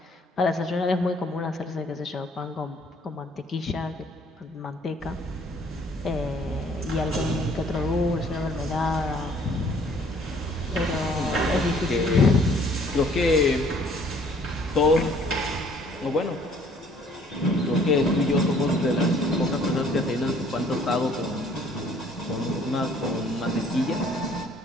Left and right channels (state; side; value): normal; both; correlation 0.59